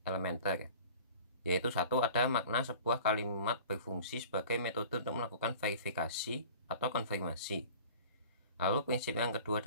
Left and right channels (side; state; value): both; inverted; correlation -0.43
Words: elementer, yaitu satu, ada makna sebuah kalimat berfungsi sebagai metode untuk melakukan verifikasi atau konfirmasi. Lalu prinsip yang kedua